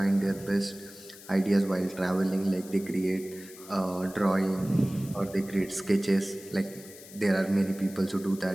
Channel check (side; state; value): left; noise; hiss, 18 dB below the sound